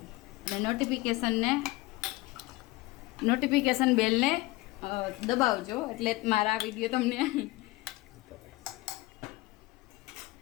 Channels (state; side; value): quieter; right; 20.2 dB